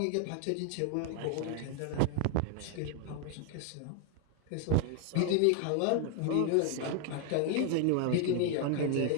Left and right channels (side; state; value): both; different; correlation 0.00